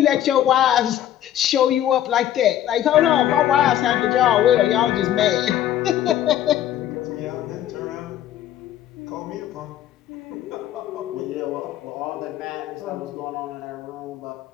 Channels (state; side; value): quieter; right; 11.7 dB